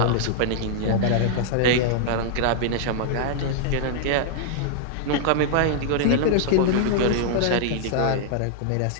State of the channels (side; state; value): both; different; correlation -0.01